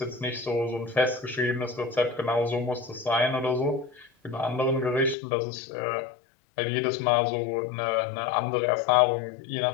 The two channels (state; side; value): drops out; right; at 5.2 s